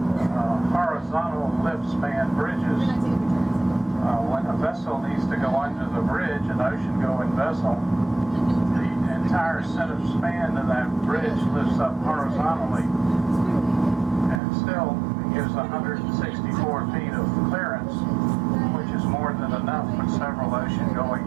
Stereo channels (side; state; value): left; drops out; at 14.4 s